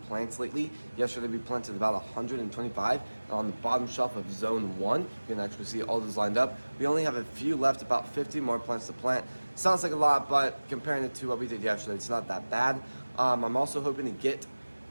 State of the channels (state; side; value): inverted; both; correlation -1.00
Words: plants lately. Yesterday we planted about 125 on the bottom shelf of zone 1. You can actually see all those lined up. We only have a few left, about 50 more plants to plant. Sounds like a lot, but comparing it to what we did yesterday, it's not that bad. I'm also hoping to get